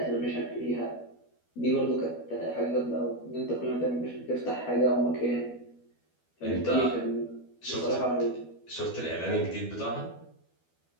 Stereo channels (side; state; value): right; late; 12 ms